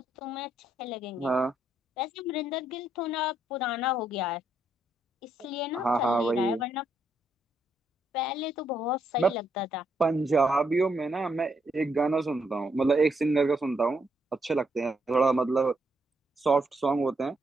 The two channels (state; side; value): normal; both; correlation 0.76